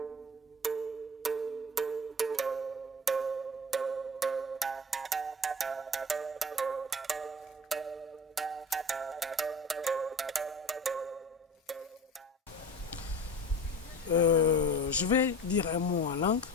Je vais dire un mot en langue.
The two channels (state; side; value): normal; both; correlation 0.36